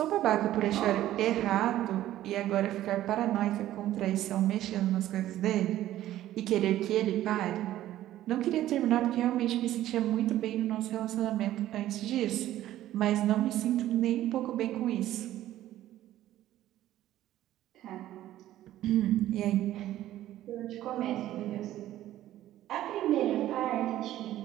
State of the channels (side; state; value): left; quieter; 13.6 dB